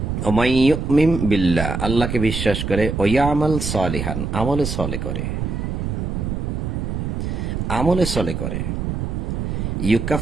ওমাই ইউমিন বিল্লাহ আল্লাহকে বিশ্বাস করে, ও ইয়ামাল সালিহান আমলে সলে করে, আমলে সলে করে,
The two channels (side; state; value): right; noise; rumble, 2 dB below the sound